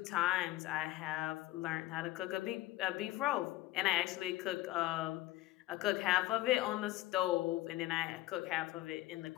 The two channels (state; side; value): quieter; right; 17.0 dB